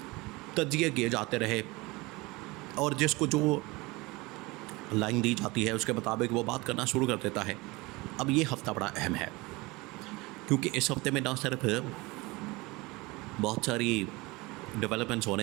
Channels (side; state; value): left; quieter; 23.3 dB